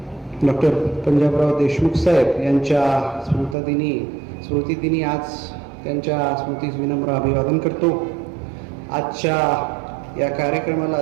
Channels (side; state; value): left; drops out; at 3.6 s